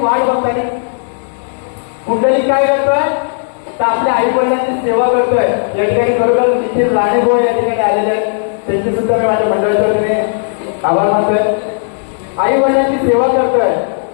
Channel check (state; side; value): silent; right; digital silence